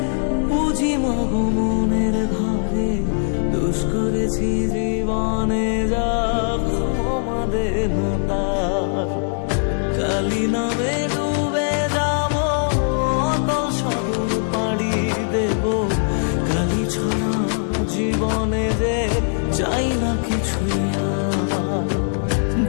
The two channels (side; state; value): right; silent; 65 dB below the other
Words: পুঁজি মাগো মনের ঘরে, দোষ করেছি জীবনে যা ক্ষমা দে না তার। কালী নামে ডুবে যাব অতল সাগর পাড়ি দেব, কালী ছাড়া জীবনে যে চাই না কিছুই আর।